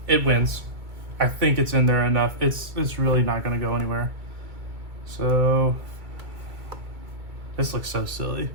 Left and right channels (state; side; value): late; left; 2.2 ms